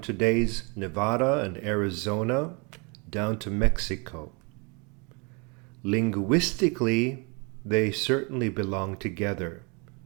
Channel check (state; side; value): quieter; left; 31.4 dB